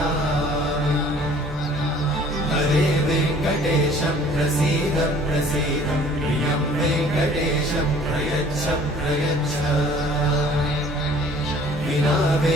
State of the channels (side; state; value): both; normal; correlation 0.53